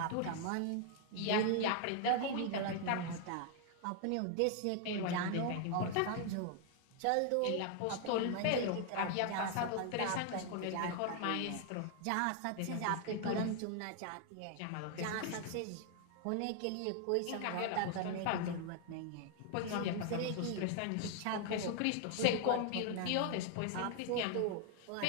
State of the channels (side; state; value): both; different; correlation 0.00